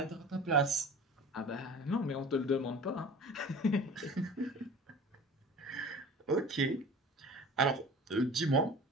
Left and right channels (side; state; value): both; normal; correlation 0.40